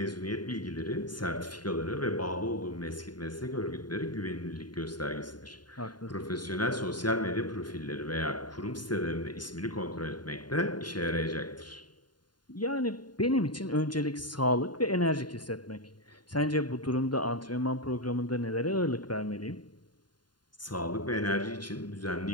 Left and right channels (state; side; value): late; right; 0.71 ms